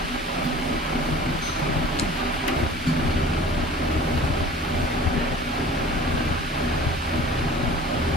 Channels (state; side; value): normal; both; correlation 0.43